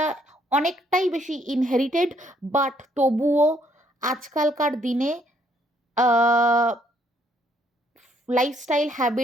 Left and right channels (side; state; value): both; normal; correlation 0.68